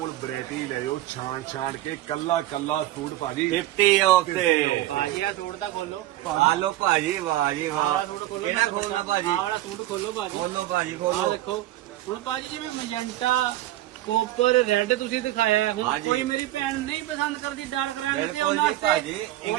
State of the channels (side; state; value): left; quieter; 15.2 dB